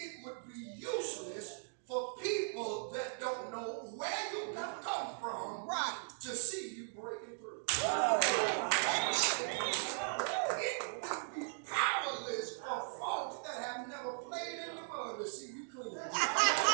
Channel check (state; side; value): silent; left; digital silence